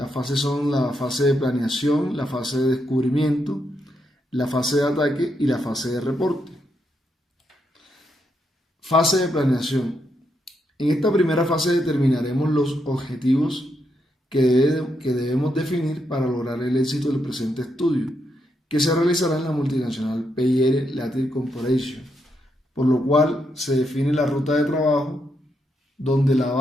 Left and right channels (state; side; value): normal; both; correlation 0.80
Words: fases son la fase de planeación, la fase de descubrimiento, la fase de ataque y la fase de reporte. Fase de planeación. En esta primera fase determinaremos los objetivos que debemos definir para lograr el éxito del presente estudio, que se realizará en la multinacional PIR Latin Corporation, por lo cual se define la ruta de trabajo donde la